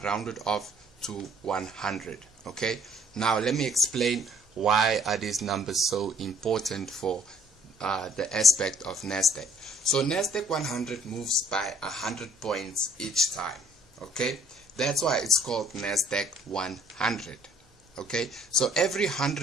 off to 100. Okay, now let me explain why are these numbers so important for the aspect of Nasdaq. So Nasdaq 100 moves by 100 points each time. Okay, that's why it's called Nasdaq 100. Okay, so every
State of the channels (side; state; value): both; normal; correlation 0.59